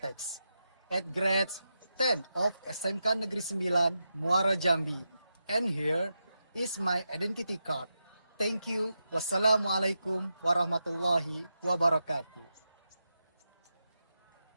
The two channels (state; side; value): inverted; both; correlation -0.87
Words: at grade 10 of SMK Negeri 9 Muara Jambi. And here is my identity card. Thank you. Wassalamualaikum warahmatullahi wabarakatuh.